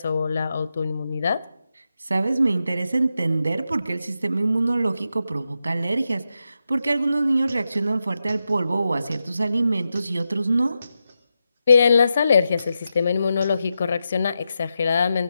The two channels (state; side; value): inverted; both; correlation -0.88